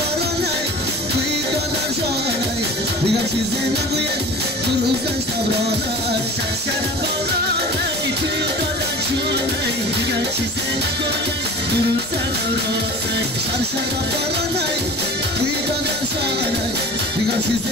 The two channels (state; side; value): normal; both; correlation 0.40